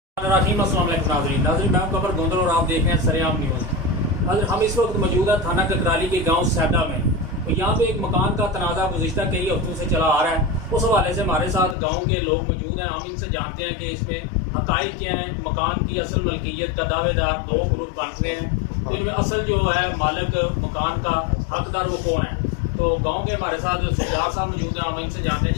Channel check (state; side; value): drops out; right; at 11.8 s